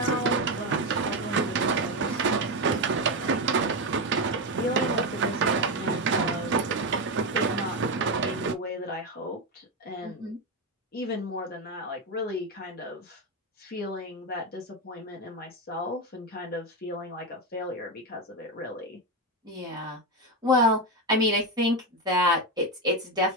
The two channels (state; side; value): normal; both; correlation 0.11